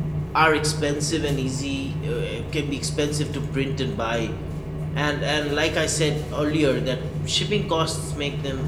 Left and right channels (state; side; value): identical; both; correlation 1.00